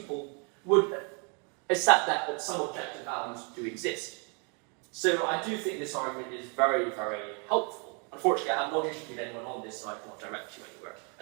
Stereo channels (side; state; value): left; quieter; 36.0 dB